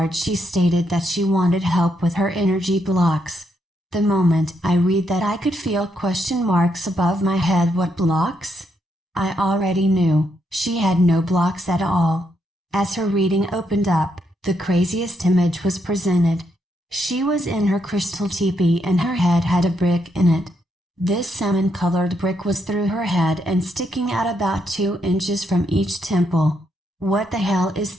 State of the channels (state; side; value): normal; both; correlation 0.78